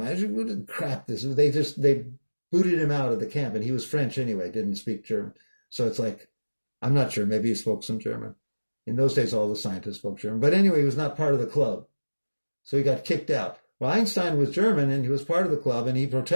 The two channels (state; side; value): inverted; both; correlation -1.00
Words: crap this is? They booted him out of the camp, and he was French anyway, didn't speak German. So it's I'm not sure, maybe he spoke some German. In those days, all the scientists spoke German. But anyway, he was not part of the club. So he got kicked out. Well, Einstein was German, and he was part of the club, and he